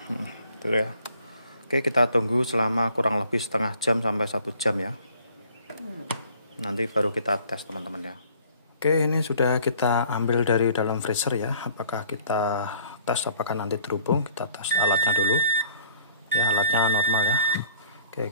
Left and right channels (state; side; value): inverted; both; correlation -0.56